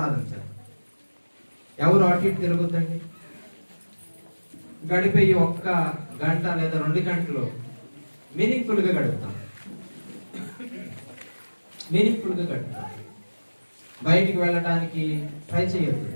ఎవరు అటు ఇటు తిరుగుద్దండి? గడిపే ఒక్క గంట లేదా 2 గంటలు మీనింగ్ఫుల్ గా గడుపుతాం. బయటికి వెళ్ళడానికి ట్రై చేయొద్దు,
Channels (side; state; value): both; inverted; correlation -1.00